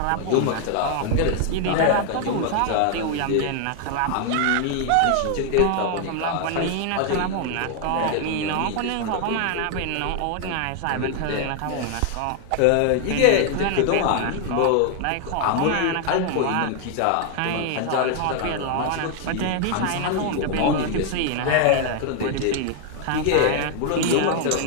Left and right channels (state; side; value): different; both; correlation 0.00